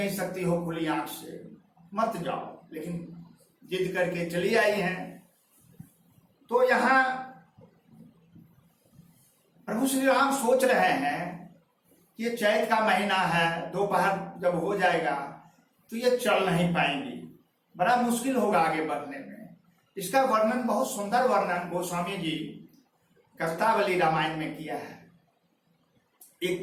सकती हो खुली आंख से, मत जाओ, लेकिन जिद करके चली आई हैं। तो यहां प्रभु श्री राम सोच रहे हैं कि ये चैत का महीना है, दोपहर जब हो जाएगा तो ये चल नहीं पाएंगी, बड़ा मुश्किल होगा आगे बढ़ने में। इसका वर्णन, बहुत सुंदर वर्णन गोस्वामी जी कष्टावली रामायण में किया है, एक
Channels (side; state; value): both; identical; correlation 1.00